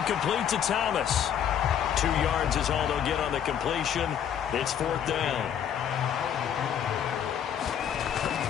complete to Thomas. 2 yards is all they'll get on the completion. It's 4th down.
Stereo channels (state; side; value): quieter; right; 9.1 dB